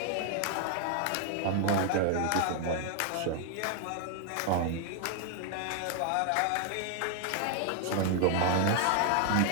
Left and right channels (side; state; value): both; different; correlation 0.00